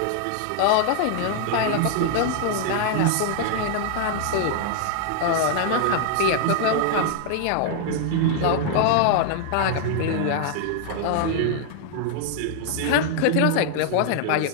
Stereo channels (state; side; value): different; both; correlation 0.00